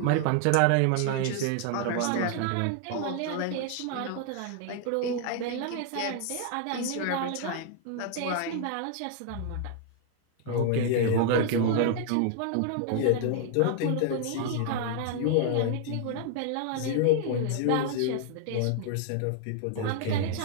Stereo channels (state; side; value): different; both; correlation 0.00